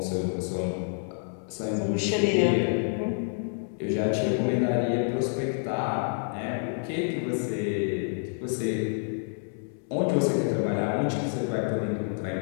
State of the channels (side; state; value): right; silent; 59 dB below the other